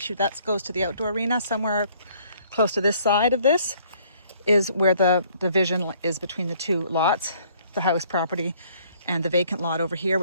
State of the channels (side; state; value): both; inverted; correlation -0.61